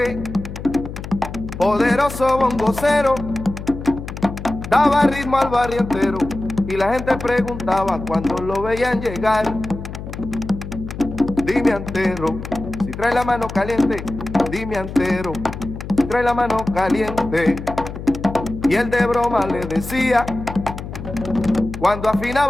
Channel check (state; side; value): noise; left; hum, 9 dB below the sound